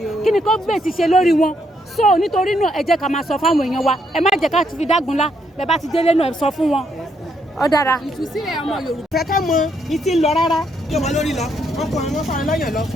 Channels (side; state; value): both; normal; correlation 0.75